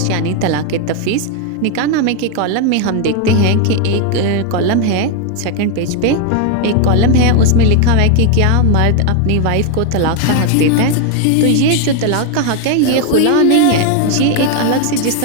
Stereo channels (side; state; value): both; different; correlation 0.01